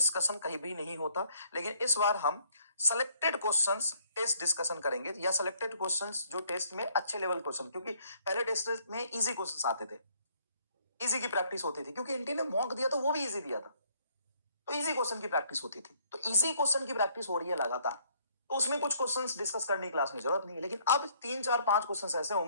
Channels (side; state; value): both; inverted; correlation -0.64